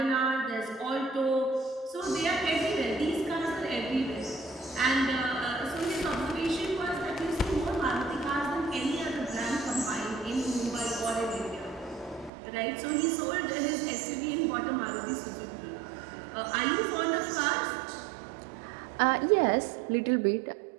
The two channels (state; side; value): drops out; left; at 12.3 s